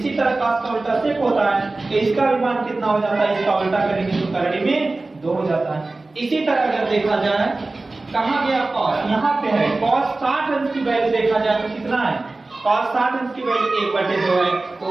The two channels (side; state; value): left; quieter; 3.2 dB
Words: तरह cos का उल्टा sec होता है तो इसका भी मान कितना हो जाता है, इसका उल्टा करेंगे तो 3 में 2 हो जाता है। इसी तरह अगर देखा जाए कहां गया cos, यहाँ पे है cos 60 अंश की वैल्यू देखा जाए तो कितना है cos 60 अंश की वैल्यू 1/2 है। तो